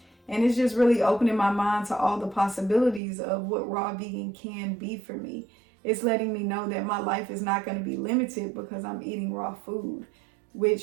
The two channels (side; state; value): left; drops out; at 3.0 s